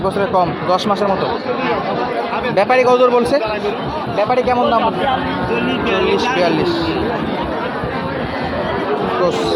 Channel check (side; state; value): both; identical; correlation 1.00